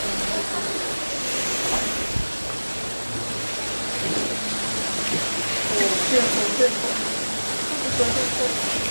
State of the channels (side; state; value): both; inverted; correlation -1.00